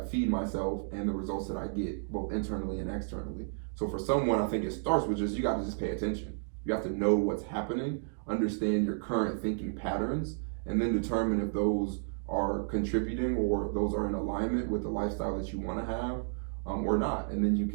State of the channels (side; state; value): left; silent; digital silence